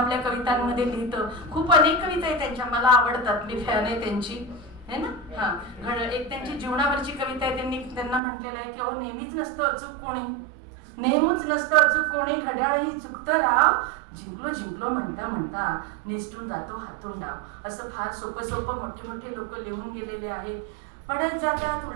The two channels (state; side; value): drops out; left; at 8.2 s